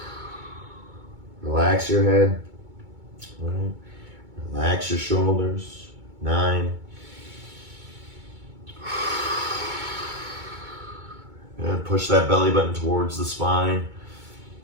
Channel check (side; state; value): left; late; 2.2 ms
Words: Relax your head. Right. Relax your shoulders. 9. Good. Push that belly button towards the spine.